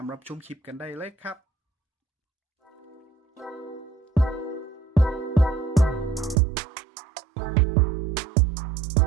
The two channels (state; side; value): drops out; left; at 6.4 s